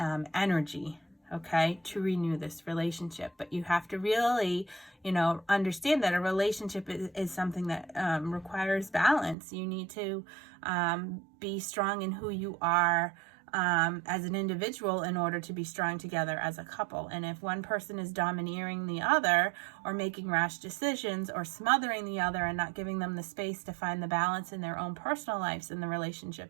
okay, to renew this relationship. But you have to really, understand that a relationship is something that requires balance. You need to be strong in who you are as an individual in order to be strong together as a couple. And if one person is domineering the other or making rash decisions or smothering the other and not giving them the space to find the balance in their own personal lives, then the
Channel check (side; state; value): left; drops out; at 9.3 s